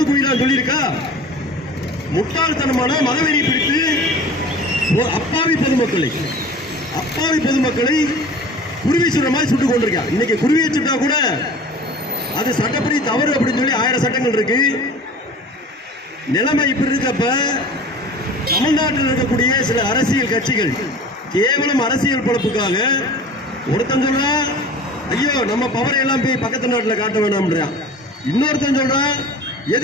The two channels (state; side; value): normal; both; correlation 0.41